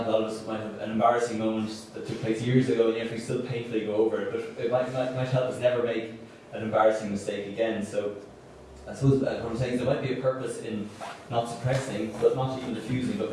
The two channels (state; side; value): identical; both; correlation 1.00